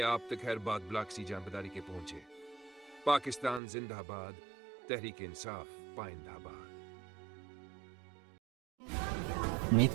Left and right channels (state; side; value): drops out; left; at 3.6 s